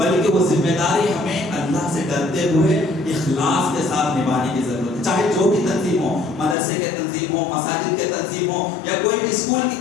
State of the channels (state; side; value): drops out; right; at 6.6 s